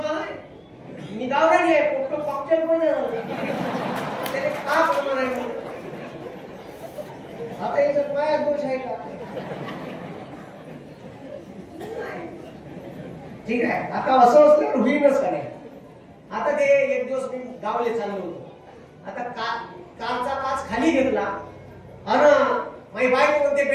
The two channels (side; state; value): both; identical; correlation 1.00